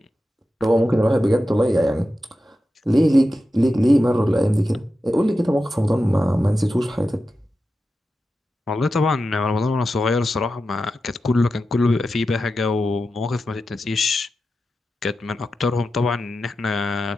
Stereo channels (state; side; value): normal; both; correlation 0.91